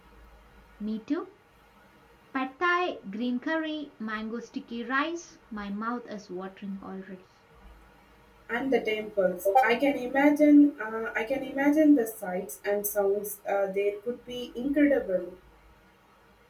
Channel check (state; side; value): identical; both; correlation 1.00